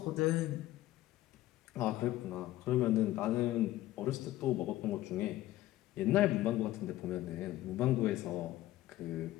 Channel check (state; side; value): quieter; right; 15.5 dB